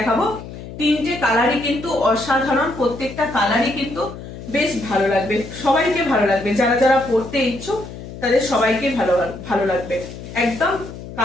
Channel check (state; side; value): noise; left; hum, 12 dB below the sound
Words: তিনটে কালারই কিন্তু অসাধারণ, প্রত্যেকটা কালারই কিন্তু বেশ ভালো লাগবে, সবাইকে ভালো লাগবে, যারা যারা পড়তে ইচ্ছুক তাদের সবাইকে ভালো লাগবে। একদম